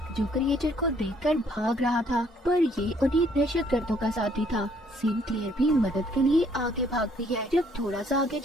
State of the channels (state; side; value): normal; both; correlation 0.64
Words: जो क्रिएचर को देखकर भाग रहा था, पर ये उन्हीं दहशतगर्दों का साथी था। सिनक्लेयर भी मदद के लिए आगे भागती है। जब थोड़ा सा आगे